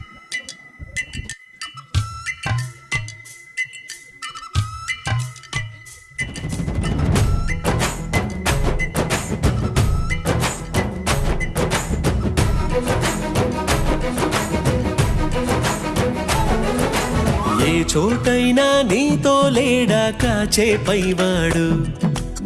ఏ చోటైనా నీతో లేడా కాచే పైవాడు,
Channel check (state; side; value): identical; both; correlation 1.00